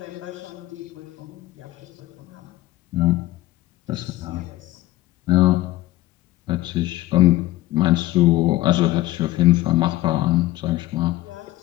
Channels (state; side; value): quieter; right; 16.7 dB